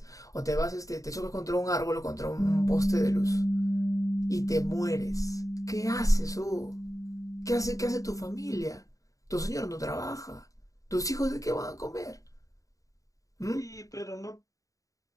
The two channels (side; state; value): right; late; 0.16 ms